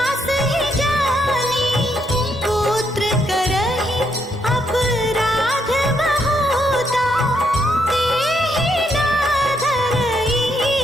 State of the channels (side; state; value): both; normal; correlation 0.75